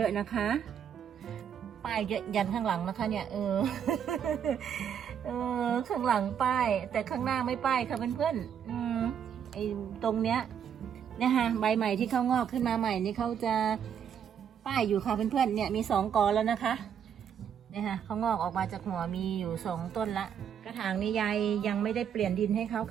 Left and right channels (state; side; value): quieter; left; 8.4 dB